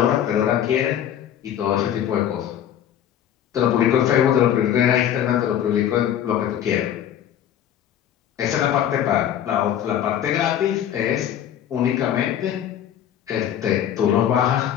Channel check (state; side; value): quieter; right; 10.3 dB